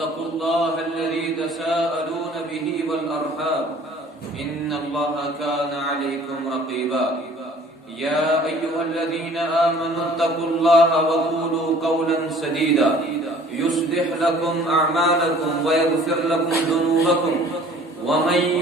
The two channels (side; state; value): both; normal; correlation 0.52